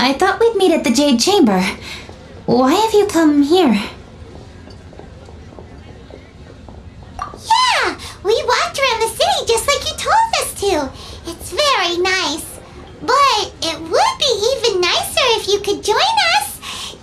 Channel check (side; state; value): both; identical; correlation 1.00